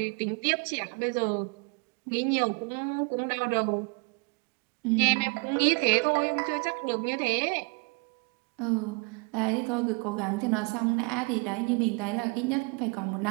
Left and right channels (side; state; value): left; quieter; 32.4 dB